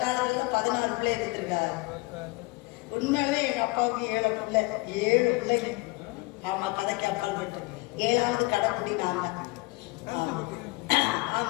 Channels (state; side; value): quieter; right; 24.9 dB